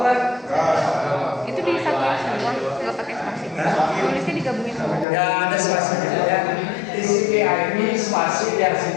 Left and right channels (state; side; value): drops out; right; at 5.1 s